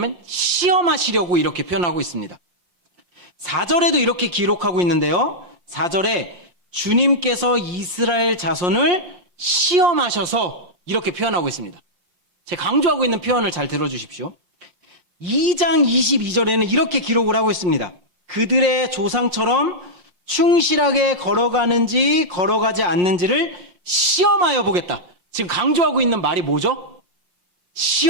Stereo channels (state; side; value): late; left; 6.0 ms